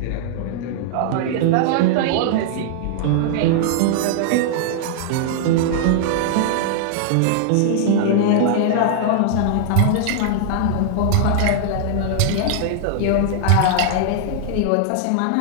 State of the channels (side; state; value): both; different; correlation -0.01